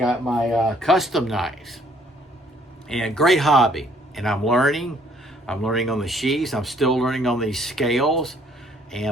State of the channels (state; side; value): normal; both; correlation 0.63